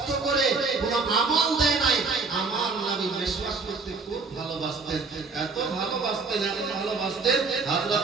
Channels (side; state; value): left; quieter; 4.2 dB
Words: করে কোনো আমল দেয় নাই। আমার নবী মেশওয়াক করতে খুব ভালোবাসতেন। ভালোবাসতেন, এত ভালোবাসতেন, এত ভালোবাসতেন।